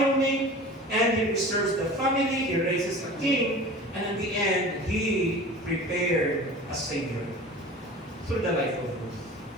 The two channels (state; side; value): normal; both; correlation 0.38